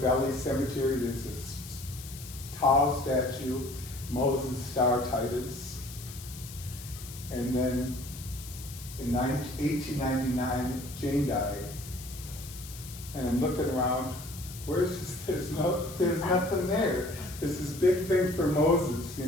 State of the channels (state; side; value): noise; left; hiss, 14 dB below the sound